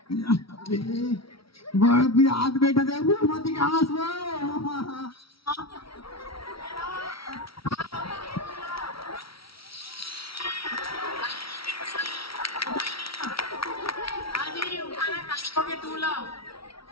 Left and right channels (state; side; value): late; right; 0.75 ms